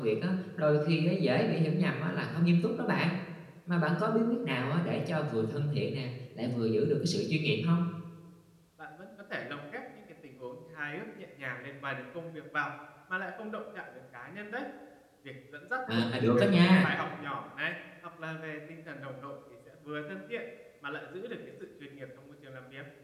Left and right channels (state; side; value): identical; both; correlation 1.00